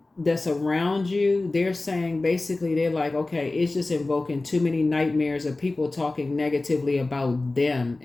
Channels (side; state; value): right; quieter; 3.1 dB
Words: that's around you. They're saying basically they're like, okay, it's just invoking too many nightmares of people talking negatively about them,